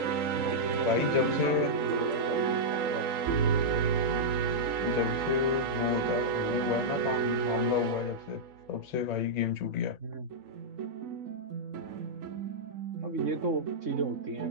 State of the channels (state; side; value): late; left; 3.8 ms